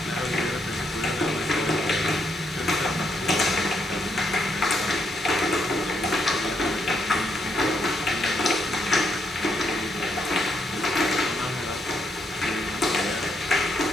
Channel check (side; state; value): both; normal; correlation 0.76